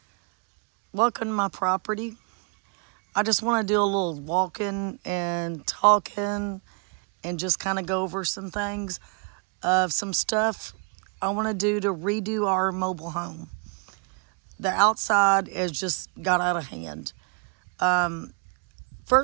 welcome to my property. I just want to do a little walking and talking and just kind of go over some things of some stuff I want to do to redo our mobile home. The outside has just got out of hand.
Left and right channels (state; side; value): quieter; left; 36.9 dB